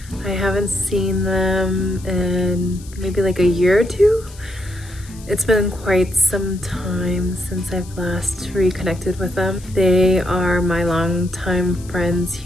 I haven't seen them in maybe like a year or two. It's been quite some time since I've last reconnected with them. They are my longtime friends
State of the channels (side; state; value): left; noise; hiss, 21 dB below the sound